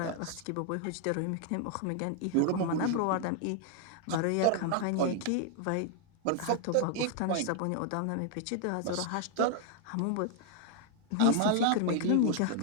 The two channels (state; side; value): different; both; correlation 0.00